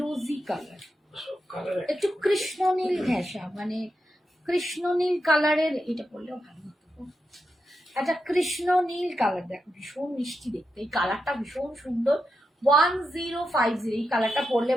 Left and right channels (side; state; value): both; normal; correlation 0.87